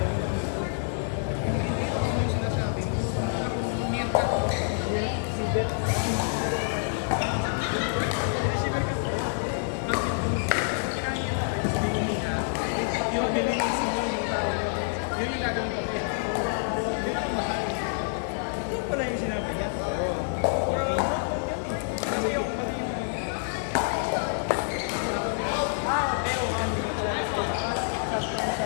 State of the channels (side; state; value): right; silent; digital silence